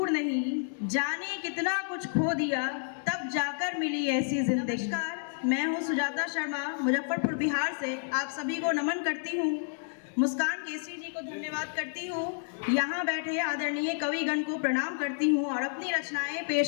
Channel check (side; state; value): right; silent; digital silence